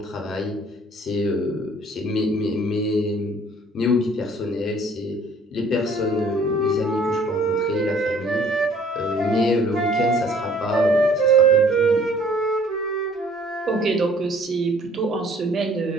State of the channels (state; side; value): normal; both; correlation 0.56